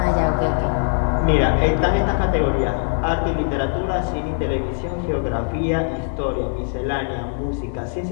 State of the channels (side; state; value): right; silent; digital silence